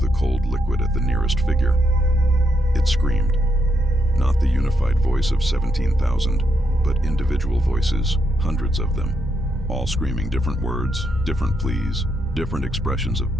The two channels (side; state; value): both; normal; correlation 0.79